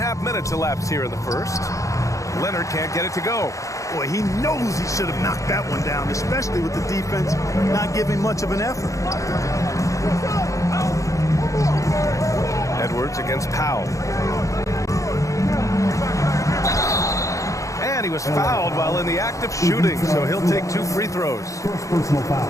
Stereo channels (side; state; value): right; late; 0.15 ms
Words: minutes elapsed here in the first. Leonard can't get it to go. Boy, he knows he should have knocked that one down, especially with the defense not giving much of an effort. Edwards against Powell. And he was fouled while in the act of shooting, so he'll take 2 free throws.